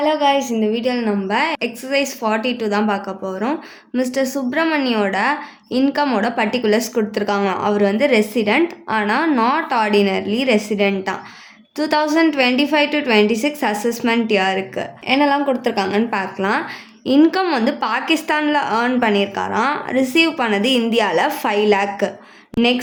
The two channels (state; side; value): identical; both; correlation 1.00